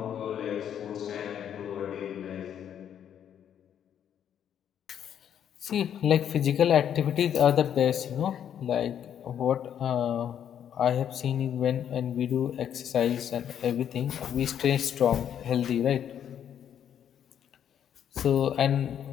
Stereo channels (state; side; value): quieter; right; 9.4 dB